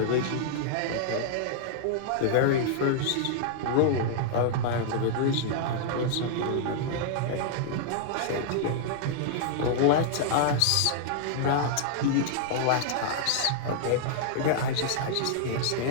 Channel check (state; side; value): different; both; correlation -0.01